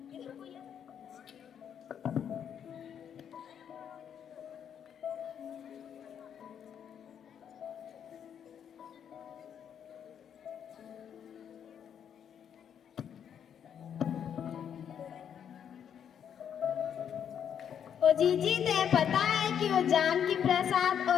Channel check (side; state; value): right; quieter; 8.5 dB